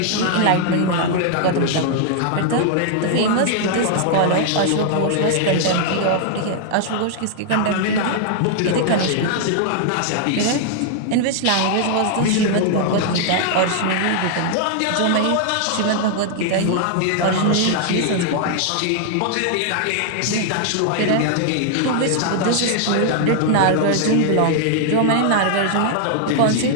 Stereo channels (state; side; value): different; both; correlation -0.01